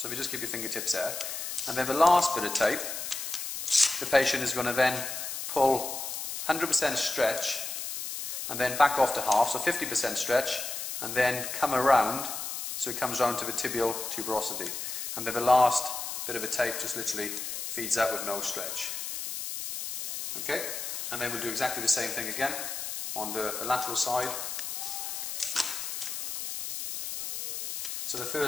if you just keep your fingertips there. And then the last bit of tape, the patient is going to then pull 100% stretch, and then back off to half, so 50% stretch, and then come around, so it comes round to the tibial tuberosity. And then the last bit of the tape just literally feeds out with no stretch. Okay, and then we'll do exactly the same thing again on the lateral side. So the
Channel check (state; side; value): noise; left; hiss, 5 dB below the sound